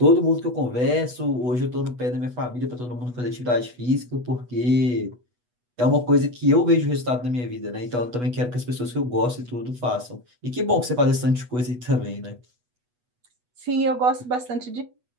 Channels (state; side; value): late; left; 8.2 ms